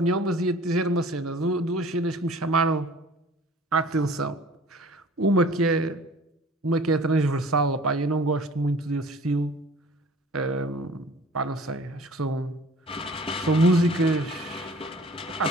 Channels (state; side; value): normal; both; correlation 0.47